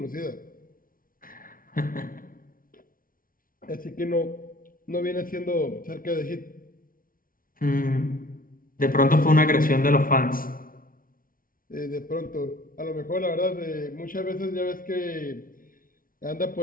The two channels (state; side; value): late; right; 0.41 ms